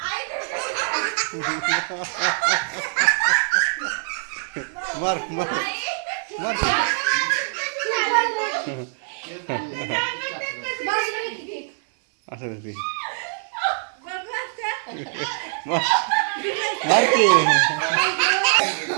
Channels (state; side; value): silent; left; 60 dB below the other